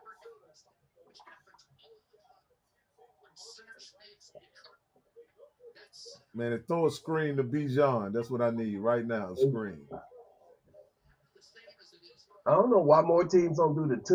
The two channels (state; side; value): identical; both; correlation 1.00